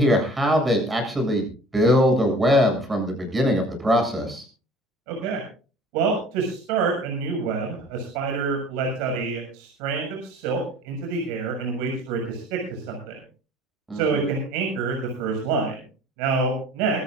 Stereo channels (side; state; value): both; normal; correlation 0.47